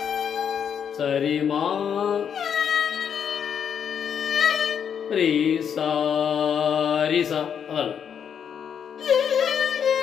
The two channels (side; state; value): right; quieter; 7.9 dB